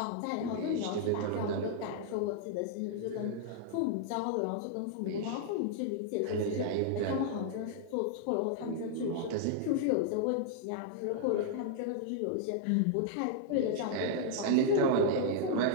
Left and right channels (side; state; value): both; different; correlation -0.01